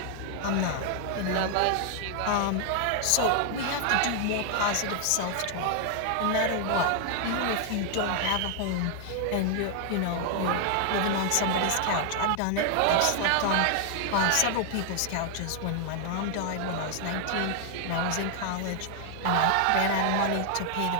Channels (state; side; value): different; both; correlation 0.00